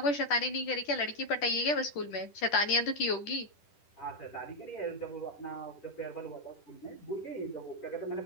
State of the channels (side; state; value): right; late; 10 ms